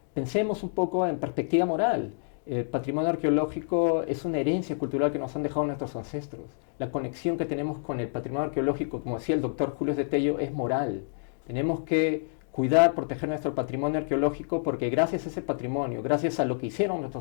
pensemos un poco en perspectiva moral. El patrimonio arqueológico es una herencia cultural que nos han dejado nuestros ancestros. La conexión que tenemos con el patrimonio arqueológico, como decía el doctor Julio de Tello, es moral. Tenemos que cuidar, proteger nuestro patrimonio arqueológico porque gracias a ese patrimonio, gracias a lo que hicieron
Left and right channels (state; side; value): silent; right; digital silence